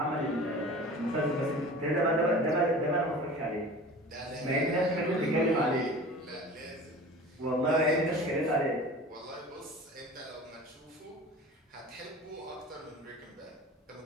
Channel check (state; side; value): normal; both; correlation 0.39